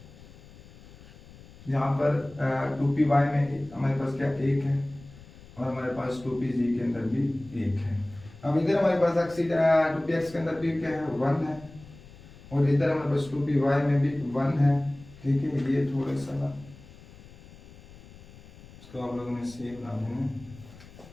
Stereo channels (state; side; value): noise; left; rumble, 20 dB below the sound